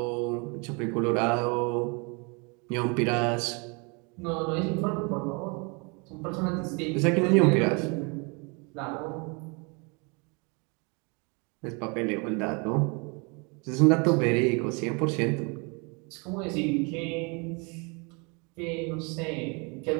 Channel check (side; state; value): left; quieter; 31.8 dB